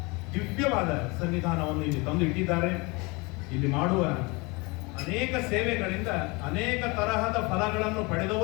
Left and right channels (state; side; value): quieter; right; 26.5 dB